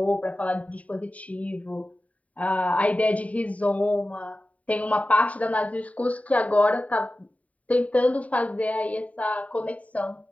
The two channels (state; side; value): late; right; 0.068 ms